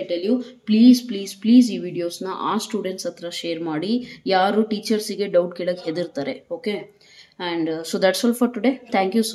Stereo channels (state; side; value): identical; both; correlation 1.00